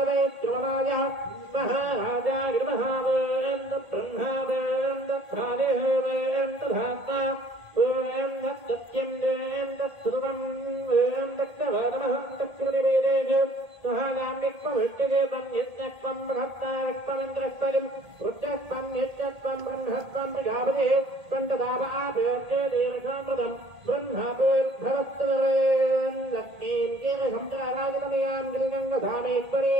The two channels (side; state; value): left; late; 1.8 ms